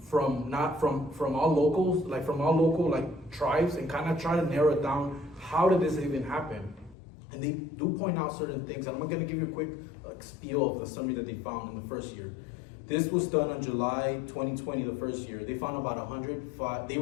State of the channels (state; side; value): drops out; right; at 7.0 s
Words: all locals, from all local tribes, and kind of try to narrow it down. How did this even happen? And they do point out certain things, and I'm going to give you a quick spiel of the summary that they found in the first year. This was done on July 2020, the first year. They found about 105, they